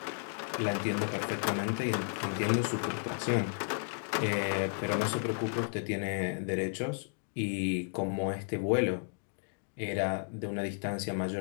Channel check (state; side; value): silent; right; digital silence